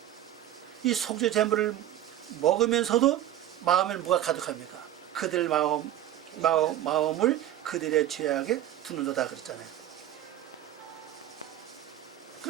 이 속죄 제물을 먹으면서도 마음에는 뭐가 가득합니까? 그들 마음을 그들의 죄악에 두는도다 그랬잖아요.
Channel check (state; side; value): quieter; left; 12.3 dB